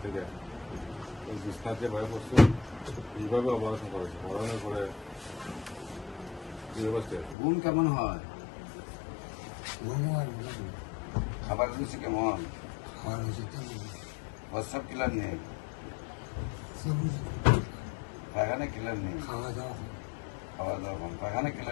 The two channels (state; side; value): drops out; right; at 7.4 s